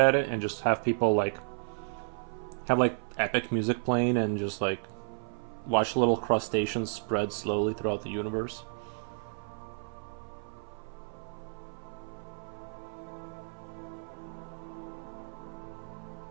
it, and just have people like have like epic music playing, and just like watch little crustaceans spread slowly throughout the universe.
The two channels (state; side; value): silent; left; 56 dB below the other